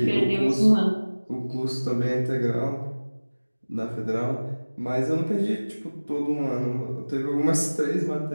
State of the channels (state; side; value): inverted; both; correlation -1.00